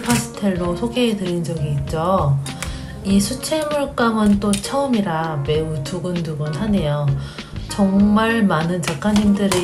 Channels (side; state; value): both; identical; correlation 1.00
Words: 파스텔로 소개해 드린 적이 있죠. 이 수채물감은 또 처음이라 매우 두근두근하네요. 정말 많은